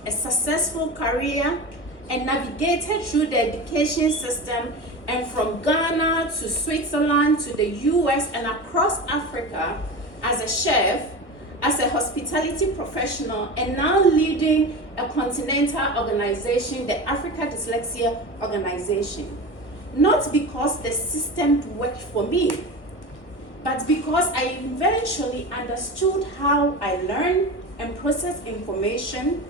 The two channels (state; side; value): late; right; 1.2 ms